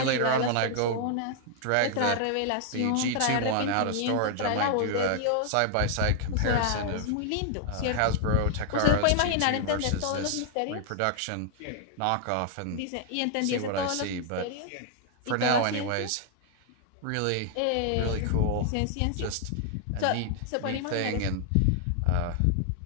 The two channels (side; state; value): both; different; correlation 0.00